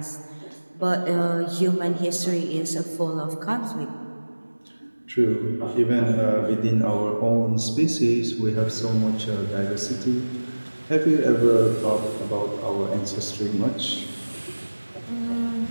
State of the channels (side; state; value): both; inverted; correlation -1.00